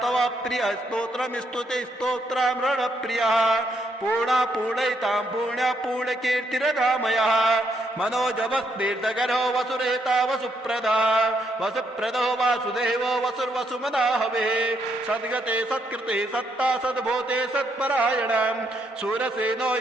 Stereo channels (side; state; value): both; normal; correlation 0.75